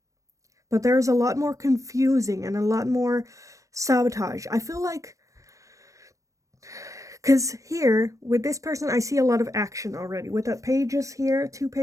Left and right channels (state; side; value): late; left; 0.16 ms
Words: But there's a lot more confusing and a lot more sabotage. I feel like, because here, with this person, I see a lot of action already. With that pages here, 2